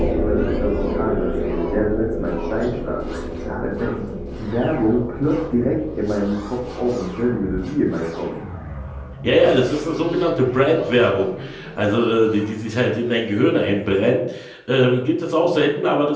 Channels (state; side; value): identical; both; correlation 1.00